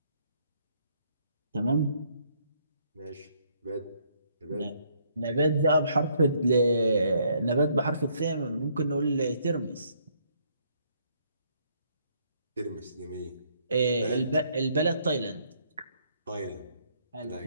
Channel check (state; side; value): inverted; both; correlation -0.68